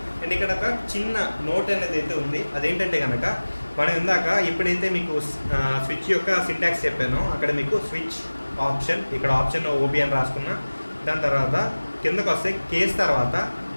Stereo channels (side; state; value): both; inverted; correlation -1.00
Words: అండ్ ఇక్కడ ఒక చిన్న నోట్ అనేది అయితే ఉంది. అదేంటంటే కనుక మనం ఇందాక ఎప్పుడైతే మీకు స్విచ్ యొక్క సింటాక్స్ చెప్పానో అక్కడ మీకు స్విచ్ ఆప్షన్, ఇక్కడ ఆప్షన్ ఓబీ అని రాసుకున్నా. దాని తర్వాత కిందకు వస్తే కేస్ తర్వాత